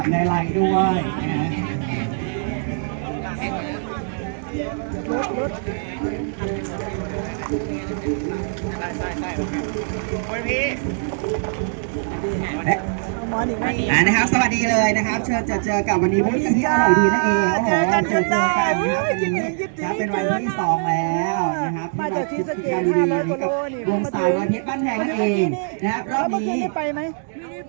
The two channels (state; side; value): silent; left; digital silence